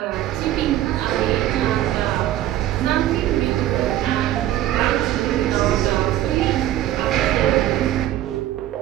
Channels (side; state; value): left; quieter; 13.4 dB